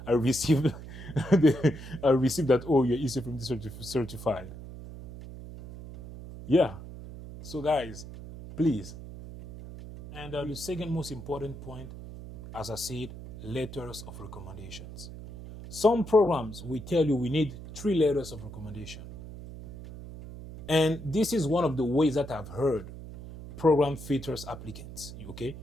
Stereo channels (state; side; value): noise; right; hum, 13 dB below the sound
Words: received I received that, oh, your ECFMD certified. Yeah. So guys, please. And the second most important point, as I said, letters of recommendations. Some programs will tell you we need 3 letters of recommendation. And this is one of the ways that I've heard program filters applicants. Okay.